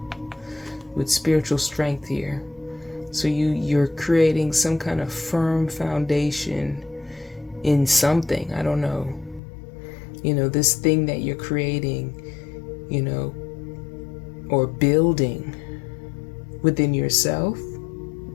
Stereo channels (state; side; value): drops out; right; at 9.4 s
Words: with spiritual strength here. So you're creating some kind of firm foundation in something. I don't know. This thing that you're creating, or building within yourself,